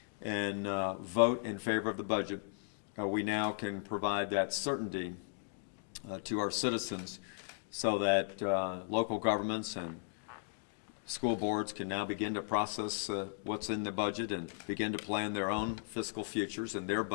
and vote in favor of the budget, we now can provide that certainty to our citizens so that local governments and school boards can now begin to process what's in the budget and begin to plan their own fiscal futures and their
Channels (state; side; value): silent; right; digital silence